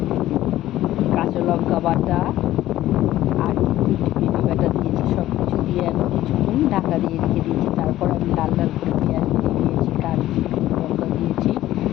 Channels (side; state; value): right; quieter; 14.4 dB